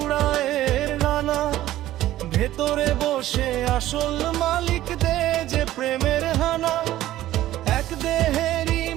ডানা, ভেতরে বসে আসল মালিক দে যে প্রেমের হানা। এক দেহেরই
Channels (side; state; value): left; quieter; 14.4 dB